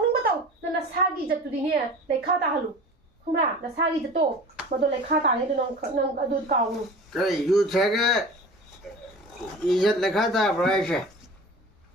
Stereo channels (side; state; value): both; normal; correlation 0.38